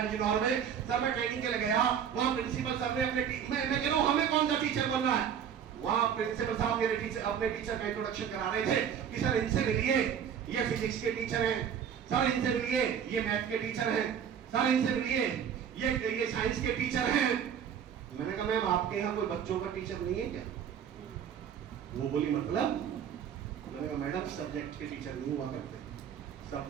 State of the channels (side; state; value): left; quieter; 8.3 dB